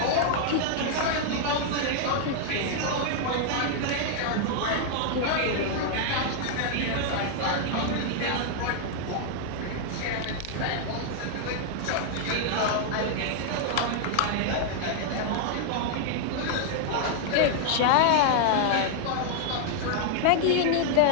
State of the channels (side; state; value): both; different; correlation 0.00